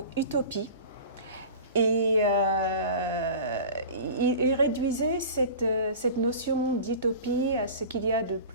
utopie et ils réduisaient cette notion d'utopie à ce qu'il y a de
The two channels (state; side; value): inverted; both; correlation -0.37